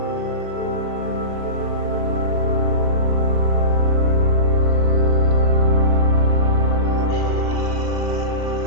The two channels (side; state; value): left; late; 2.7 ms